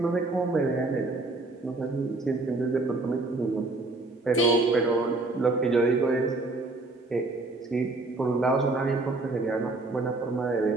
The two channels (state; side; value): quieter; left; 3.2 dB